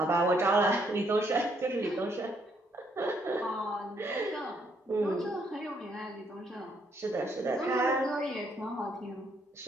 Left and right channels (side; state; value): both; normal; correlation 0.71